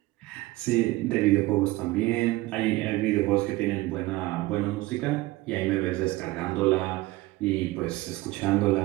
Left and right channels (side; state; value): left; quieter; 19.4 dB